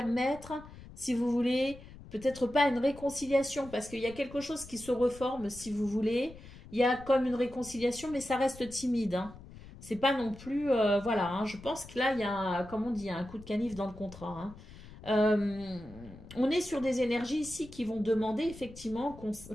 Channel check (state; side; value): noise; left; rumble, 17 dB below the sound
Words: si vous voulez, peut-être pas une réconciliation, parce qu'il y a quelque chose qui se reforme, si vous voulez. Il y a comme une réconciliation, mais ça reste timide, hein. C'est pas non plus, voilà, hein. Je pense que là, il y a, comme on dit, il y a un coup de canif dans le contrat, hein. Euh, on est sur des énergies ici qui vont demander effectivement